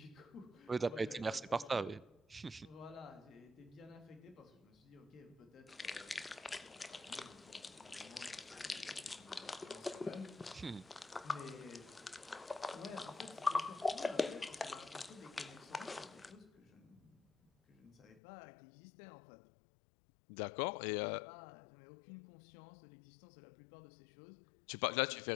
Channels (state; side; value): drops out; right; at 18.2 s